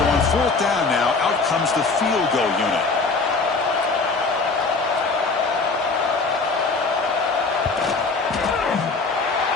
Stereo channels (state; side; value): quieter; right; 4.1 dB